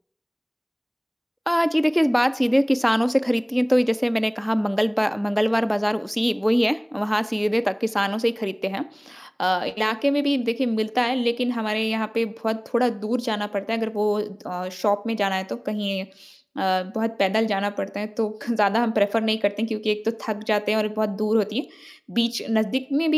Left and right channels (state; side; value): identical; both; correlation 1.00